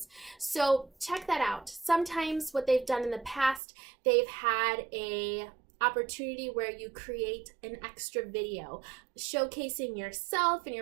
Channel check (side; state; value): left; drops out; at 3.6 s